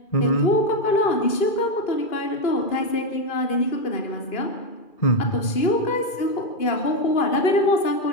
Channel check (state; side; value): late; right; 2.4 ms